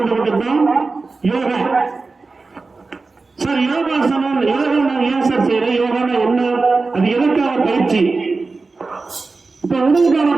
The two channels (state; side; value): quieter; left; 3.9 dB